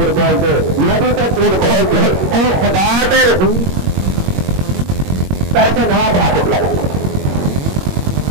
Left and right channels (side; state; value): left; late; 21 ms